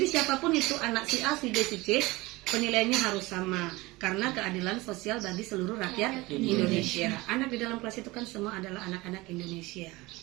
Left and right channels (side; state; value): left; quieter; 21.4 dB